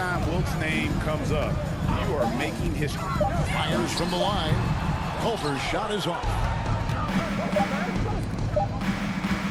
Wilt's name comes up, you are making history. Fires from the line. Culver's shot is off.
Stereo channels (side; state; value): both; identical; correlation 1.00